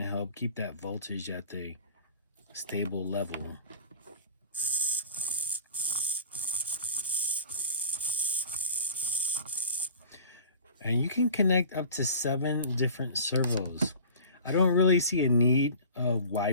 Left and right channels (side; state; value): both; inverted; correlation -0.42